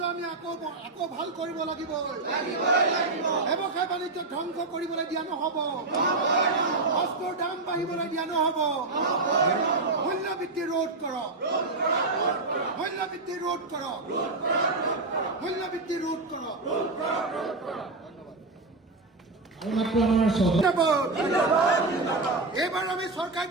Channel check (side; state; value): left; quieter; 3.4 dB